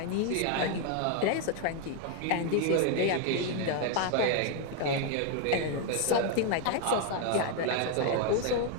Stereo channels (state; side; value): different; both; correlation 0.01